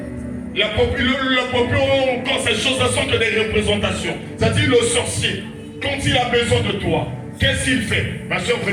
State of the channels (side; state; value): both; identical; correlation 1.00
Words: Le popi, quand ces choses-là sont que des représentations. C'est-à-dire, le sorcier, quand il a besoin de toi, qu'est-ce qu'il fait? Ma soeur,